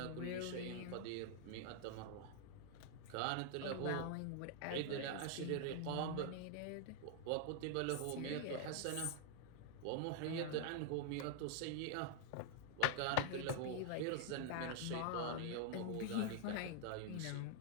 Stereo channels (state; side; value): different; both; correlation 0.00